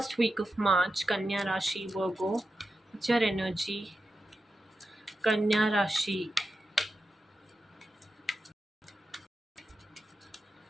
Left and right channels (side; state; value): both; normal; correlation 0.90